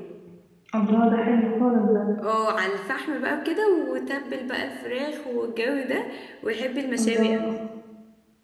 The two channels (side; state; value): both; identical; correlation 1.00